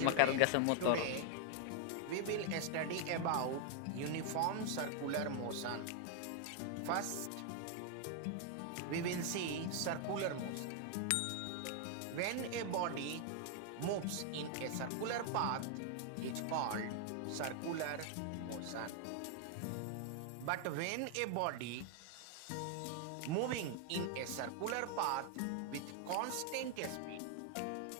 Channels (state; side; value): different; both; correlation 0.00